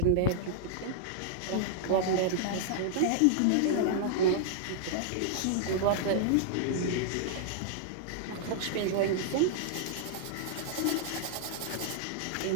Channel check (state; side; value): different; both; correlation -0.01